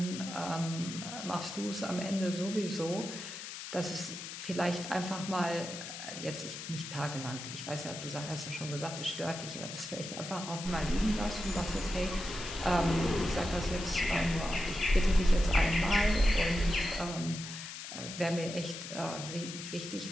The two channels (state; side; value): noise; left; hiss, 9 dB below the sound